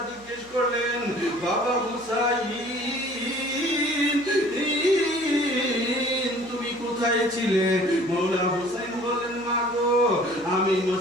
জিজ্ঞেস করলেন, বাবা হুসাইন তুমি কোথায় ছিলে? মওলা হুসাইন বলেন, মা গো আমি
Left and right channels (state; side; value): noise; right; hum, 25 dB below the sound